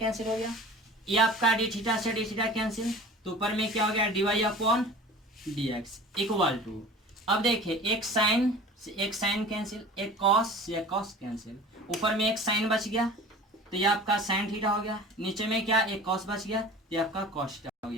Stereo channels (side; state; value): both; normal; correlation 0.41